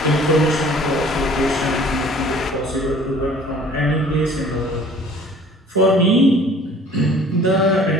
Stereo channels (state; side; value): normal; both; correlation 0.51